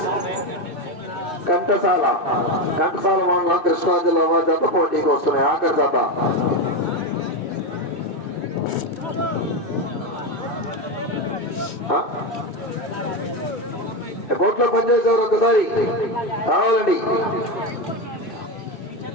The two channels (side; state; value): right; late; 2.6 ms